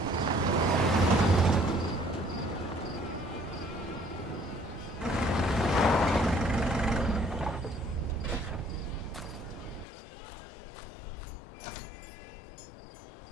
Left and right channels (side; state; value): right; drops out; at 9.9 s